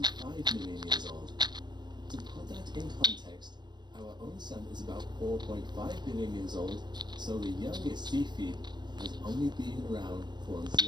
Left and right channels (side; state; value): left; late; 0.21 ms